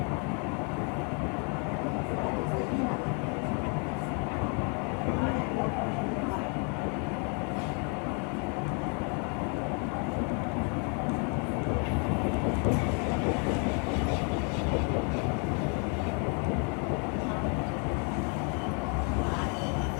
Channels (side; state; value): right; quieter; 37.1 dB